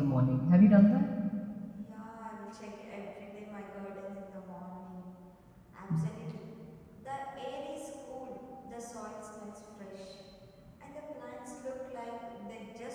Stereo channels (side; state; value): both; identical; correlation 1.00